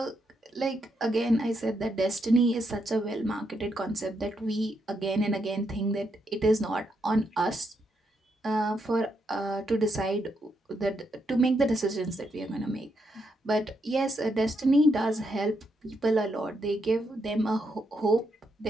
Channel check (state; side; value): normal; both; correlation 0.79